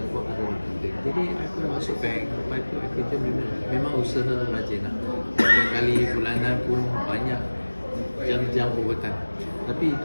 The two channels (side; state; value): both; inverted; correlation -1.00